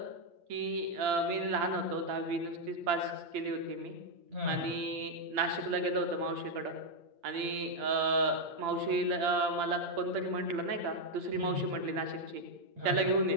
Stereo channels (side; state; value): left; late; 8.7 ms